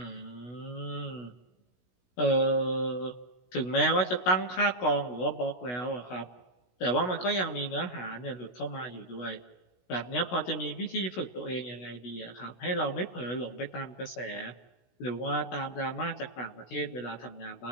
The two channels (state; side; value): late; right; 16 ms